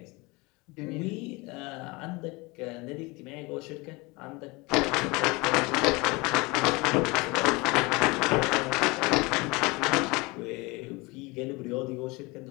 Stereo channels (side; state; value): right; quieter; 25.0 dB